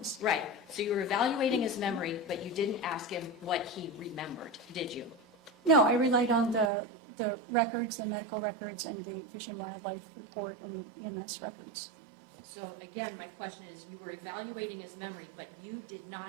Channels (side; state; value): left; drops out; at 6.7 s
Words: Right. So you were evaluating his memory, but you didn't ask him what he remembered, did you? No, I relied on the records, the medical records, and the Fish and Wildlife report and the EMS records. So again, my question is, you were evaluating his memory, but you did